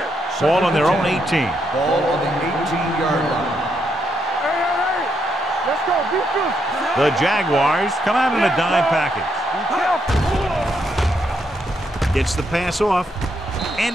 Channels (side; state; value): both; normal; correlation 0.78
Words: Ball on their own 18. Ball on the 18-yard line. Hey. Let's go, defense. The Jaguars come out in a dime package. Gets the pass off,